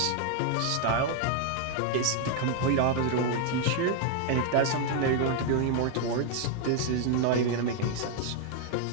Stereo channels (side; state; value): both; different; correlation 0.00